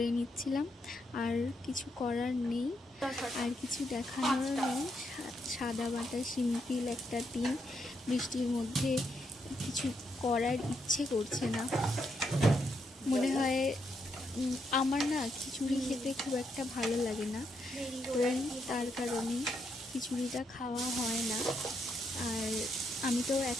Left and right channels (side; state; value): both; normal; correlation 0.79